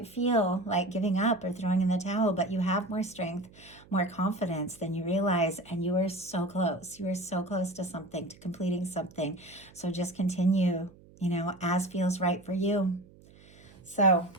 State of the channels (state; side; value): noise; right; hum, 24 dB below the sound